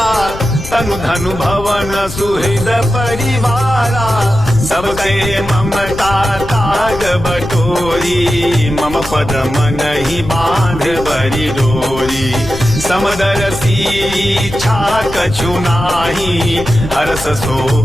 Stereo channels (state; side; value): noise; left; rumble, 11 dB below the sound